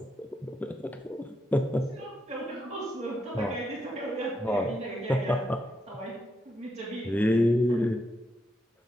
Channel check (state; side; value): normal; both; correlation 0.81